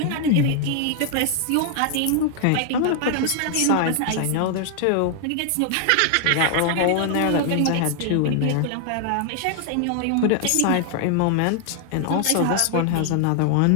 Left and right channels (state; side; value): different; both; correlation 0.00